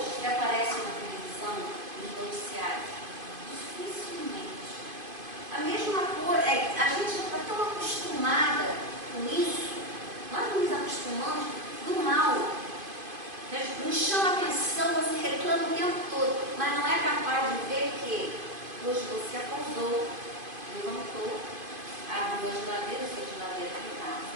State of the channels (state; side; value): late; left; 2.5 ms